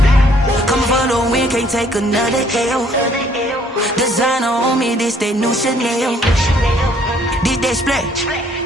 Coming for the win, can't take another L. Designer on me, this that new Chanel. Did that splash,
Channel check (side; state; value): both; normal; correlation 0.63